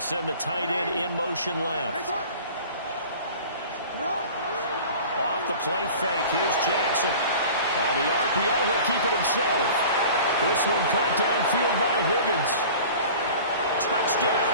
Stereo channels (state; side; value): inverted; both; correlation -0.42